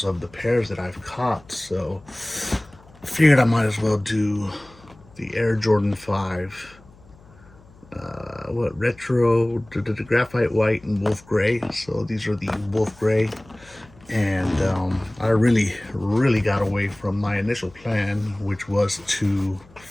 of the pairs that I've caught, so I figured I might as well do the Air Jordan 5. Retro, the graphite white and wolf gray. So these are the wolf gray, and I really got away from my initial plan, which was to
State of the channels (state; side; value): noise; left; hum, 25 dB below the sound